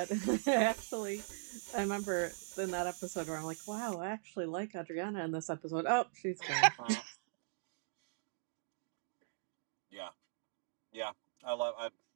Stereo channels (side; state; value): left; silent; digital silence